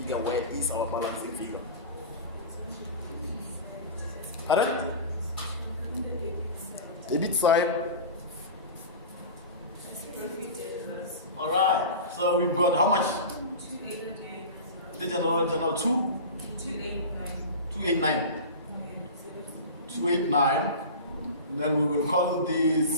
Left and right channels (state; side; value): inverted; both; correlation -0.31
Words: Where is our balancing figure? Pardon? Debit side. Alright, so we've got how much? The general 289. 289. Then we will call